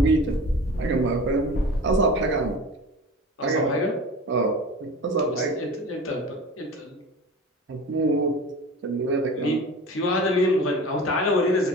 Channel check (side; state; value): both; normal; correlation 0.35